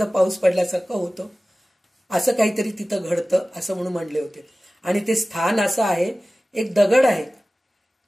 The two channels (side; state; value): both; normal; correlation 0.97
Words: पाऊस पडल्यासारखं होतं. असं काहीतरी तिथं घडतं असं म्हणून म्हणले होते. आणि ते स्थान असं आहे, एक दगड आहे,